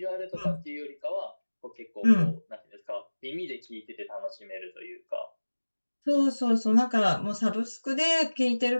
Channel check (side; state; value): both; inverted; correlation -1.00